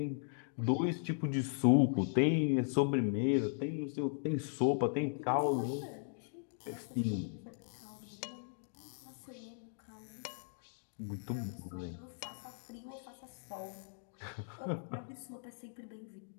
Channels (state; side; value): silent; right; digital silence